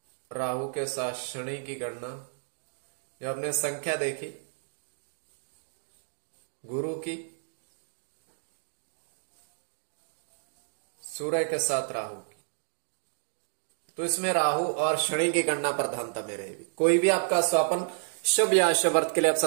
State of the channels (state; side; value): silent; left; digital silence